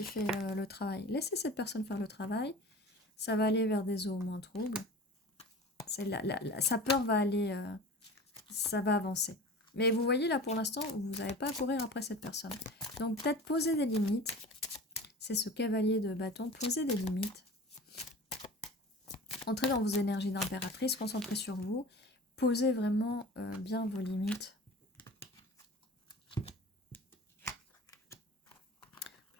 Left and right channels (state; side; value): normal; both; correlation 0.38